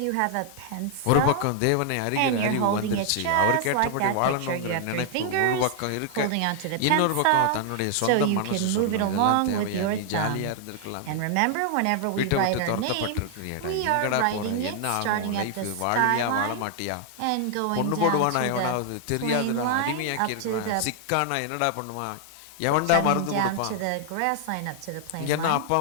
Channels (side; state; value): both; different; correlation 0.00